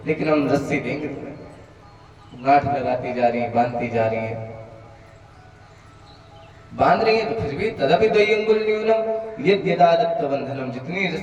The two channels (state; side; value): identical; both; correlation 1.00